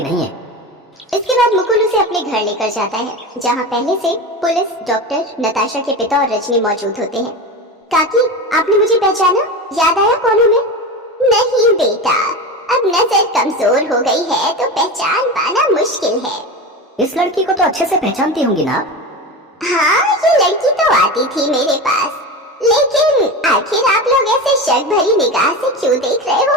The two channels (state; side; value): normal; both; correlation 0.25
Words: नहीं है। इसके बाद मुकुल उसे अपने घर लेकर जाता है, जहाँ पहले से पुलिस, डॉक्टर, नताशा के पिता और रजनी मौजूद होते हैं। काकी, आपने मुझे पहचाना? याद आया कौन हूँ मैं? नहीं बेटा, अब नजर कमजोर हो गई है तो पहचान पाना मुश्किल है। इस लड़की को तो अच्छे से पहचानती होंगी ना? हाँ, ये लड़की तो आती थी मेरे पास, लेकिन आखिर आप लोग ऐसे शक भरी निगाह से क्यों देख रहे हो